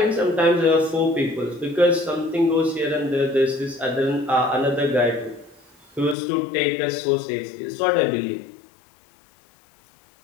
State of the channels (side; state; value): right; drops out; at 6.2 s